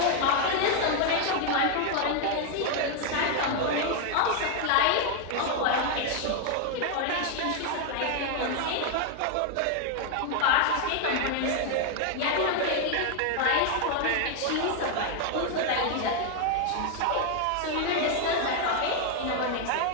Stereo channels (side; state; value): both; different; correlation 0.00